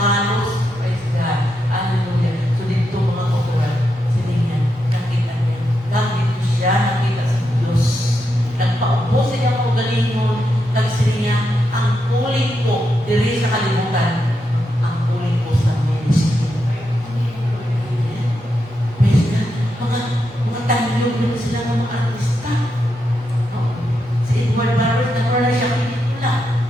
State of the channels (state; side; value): normal; both; correlation 0.84